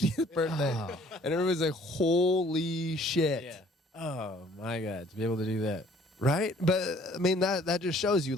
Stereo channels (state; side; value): normal; both; correlation 0.57